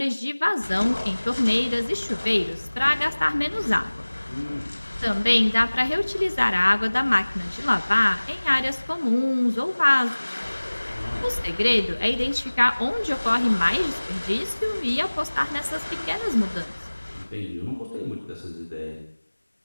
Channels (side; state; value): both; inverted; correlation -1.00